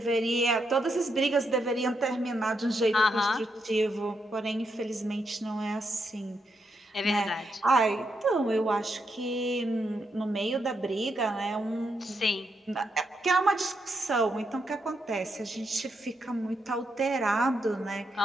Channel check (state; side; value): normal; both; correlation 0.81